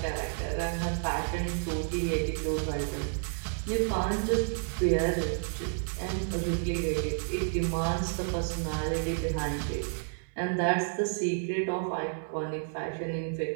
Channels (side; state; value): left; silent; 57 dB below the other